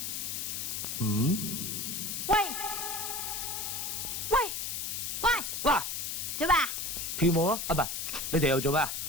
喂喂喂，嗱，做咩啊？跳舞咯，啊唔係，你哋又做咩啊？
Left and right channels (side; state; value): left; noise; hiss, 3 dB below the sound